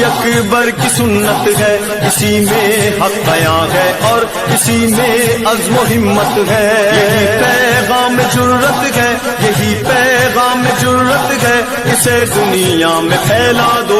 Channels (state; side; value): identical; both; correlation 1.00